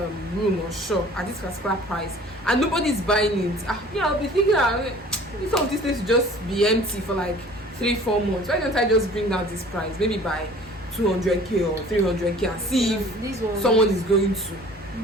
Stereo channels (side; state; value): both; normal; correlation 0.48